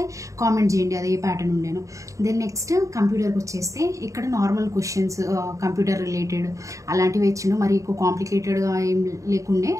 కామెంట్ చేయండి అది ఏ ప్యాటర్న్ ఉండేను. దెన్ నెక్స్ట్ కంప్యూటర్కి వచ్చేస్తే ఇక్కడ నార్మల్ క్వశ్చన్స్ కంప్యూటర్ రిలేటెడ్ అలాంటివి ఇచ్చిండు. మరి ఎక్కువ కాంప్లికేటెడ్గా ఏం లేకుండే,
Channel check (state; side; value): late; left; 0.16 ms